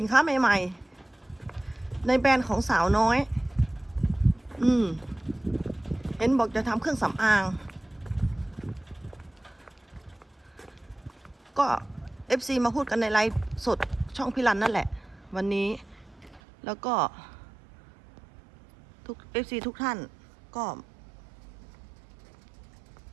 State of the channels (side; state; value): left; drops out; at 16.4 s